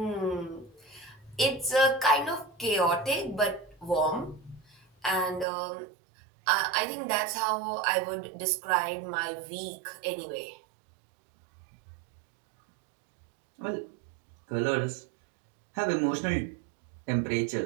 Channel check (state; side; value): drops out; left; at 5.5 s